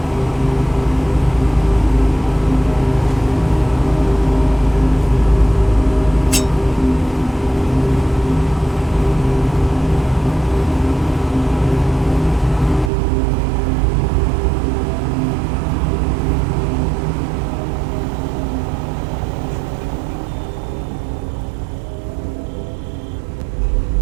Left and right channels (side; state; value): left; drops out; at 12.9 s